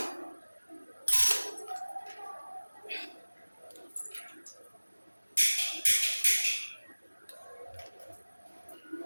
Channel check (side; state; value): both; inverted; correlation -1.00